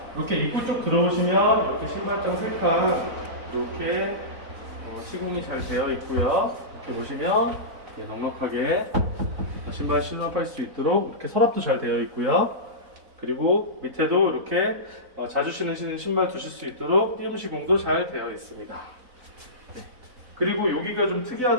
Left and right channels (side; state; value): left; late; 4.0 ms